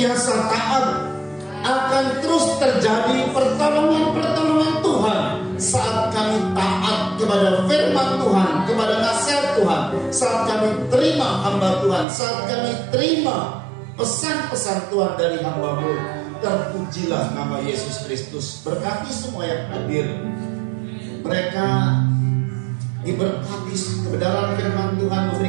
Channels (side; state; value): left; drops out; at 12.1 s